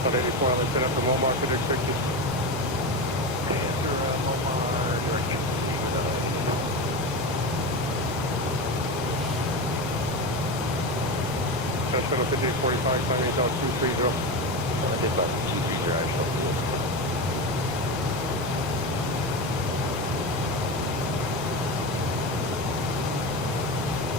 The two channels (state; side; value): normal; both; correlation 0.20